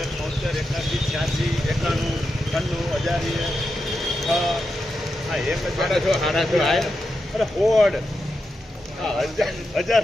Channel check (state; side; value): normal; both; correlation 0.88